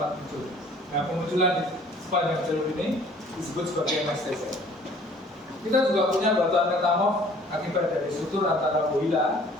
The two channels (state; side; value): normal; both; correlation 0.54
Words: muncul. Nah, pemunculan di sepanjang jalur ini disebut sebagai MSTZ. Kita juga punya batuan metamorf akibat dari sutur antara Woyla